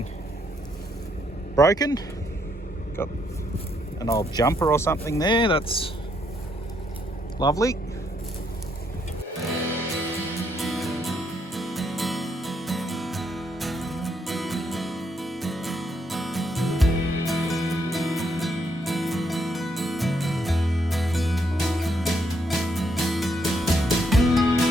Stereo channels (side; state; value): both; normal; correlation 0.74